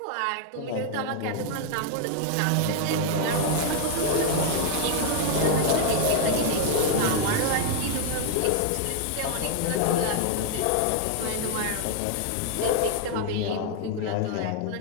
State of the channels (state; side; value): different; both; correlation 0.00